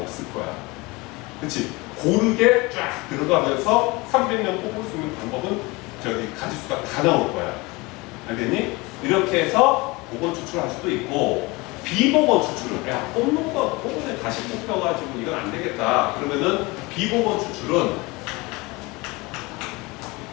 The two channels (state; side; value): quieter; right; 24.2 dB